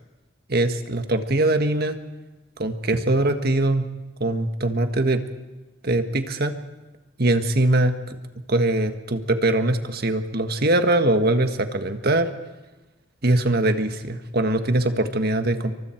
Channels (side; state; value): both; normal; correlation 0.41